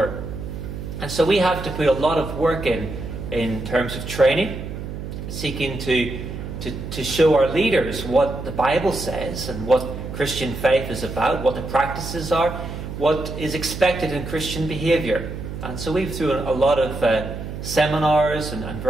And so we have to put a lot of work in terms of training, seeking to show our leaders what the Bible says and what Christian faith is about, what the practices are, what is expected in Christian behaviour. And so we've through a lot of seminars and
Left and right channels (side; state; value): right; noise; hum, 8 dB below the sound